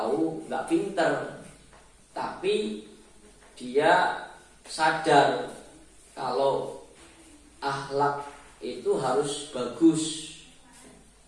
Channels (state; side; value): identical; both; correlation 1.00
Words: nggak pinter, tapi dia sadar kalau akhlak itu harus bagus,